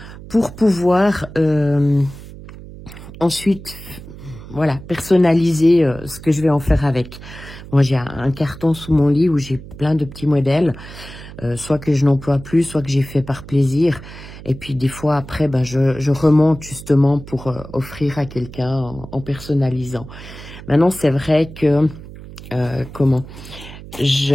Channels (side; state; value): right; noise; hum, 15 dB below the sound